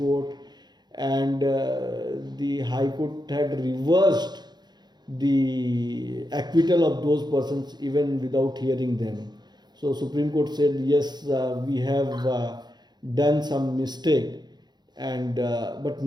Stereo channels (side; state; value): left; late; 0.21 ms